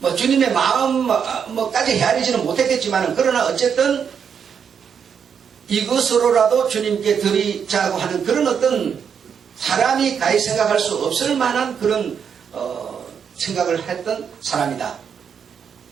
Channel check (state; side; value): quieter; left; 7.2 dB